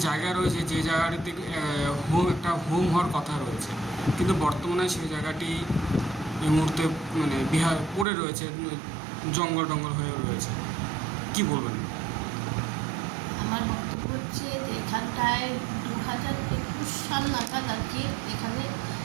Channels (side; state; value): left; drops out; at 8.1 s